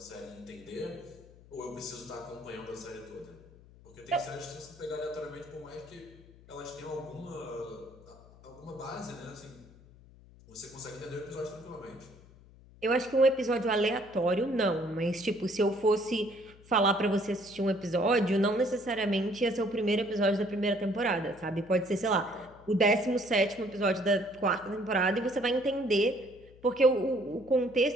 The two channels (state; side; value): noise; left; hum, 23 dB below the sound